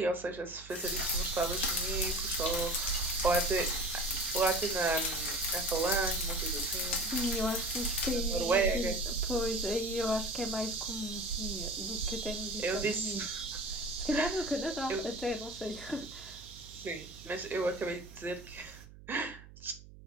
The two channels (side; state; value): right; noise; hum, 19 dB below the sound